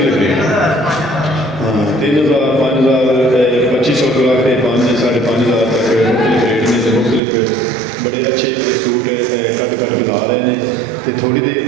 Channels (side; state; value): left; drops out; at 7.2 s